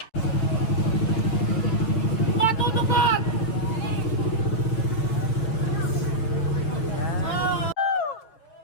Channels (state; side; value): late; right; 6.7 ms